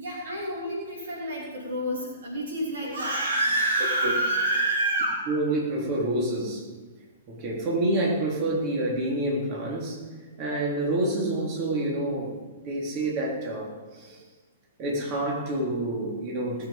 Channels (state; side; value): inverted; both; correlation -0.33